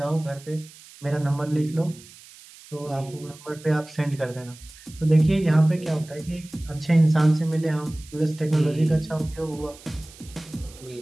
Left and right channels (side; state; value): right; noise; hiss, 21 dB below the sound